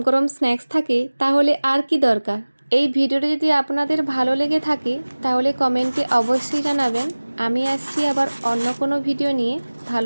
গরম স্ন্যাক্স থাকে তাহলে আর কি দরকার। এই ভিডিওটা যদি আপনাদের ভালো লেগে থাকে তাহলে কমেন্টে অবশ্যই জানাবেন। আমি আসছি আবার অন্য কোনো ভিডিও নিয়ে।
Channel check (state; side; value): inverted; both; correlation -1.00